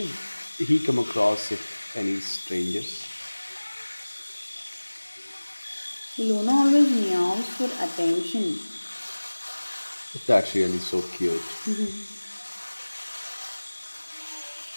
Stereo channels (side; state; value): both; inverted; correlation -1.00